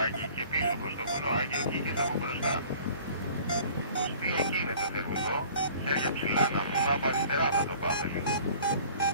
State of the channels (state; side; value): inverted; both; correlation -0.50